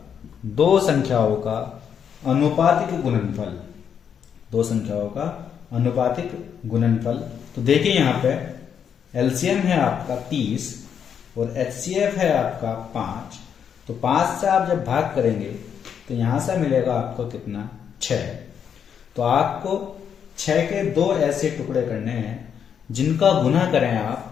2 संख्याओं का अनुपातिक गुणनफल। 2 संख्याओं का अनुपातिक गुणनफल। तो देखिए यहां पे एलसीएम है आपका 30 और एचसीएफ है आपका 5। तो 5 से आप जब भाग करेंगे तो यहां से मिलेगा आपको कितना? 6। तो आपको 6 के 2 ऐसे टुकड़े करने हैं जिनका गुना करें,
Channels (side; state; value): right; quieter; 7.9 dB